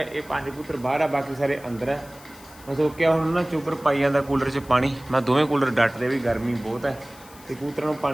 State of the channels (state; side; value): noise; left; hiss, 22 dB below the sound